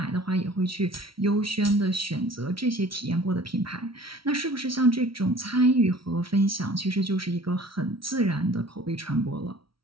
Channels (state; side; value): late; left; 0.75 ms